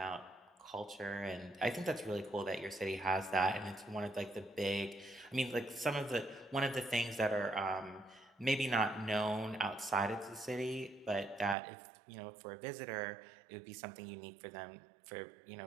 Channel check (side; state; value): left; drops out; at 11.6 s